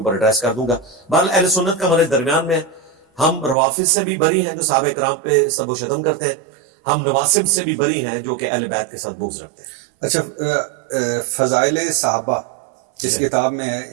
ایڈریس کر دوں گا. بہرحال اہل سنت کا ہمارے درمیان میں, ہم روافض سے بھی بری ہیں جو صحابہ کرام پہ سب و شتم کرتے ہیں, ہم نواسب سے بھی بری ہیں جو کہ اہل بیت کے ساتھ بغض رکھتے ہیں. اچھا, فضائل صحابہ اس کتاب میں ہے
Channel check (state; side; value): drops out; left; at 3.6 s